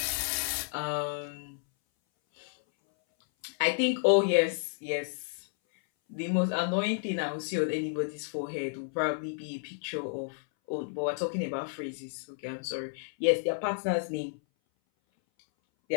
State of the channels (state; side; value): silent; right; 57 dB below the other